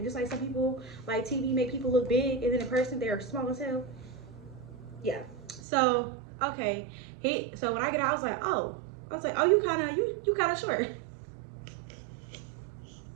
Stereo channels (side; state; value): left; drops out; at 5.6 s